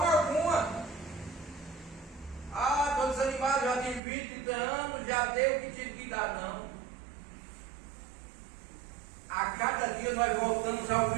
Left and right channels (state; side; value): drops out; left; at 4.0 s